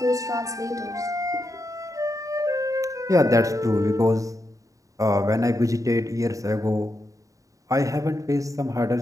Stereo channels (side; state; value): left; late; 0.16 ms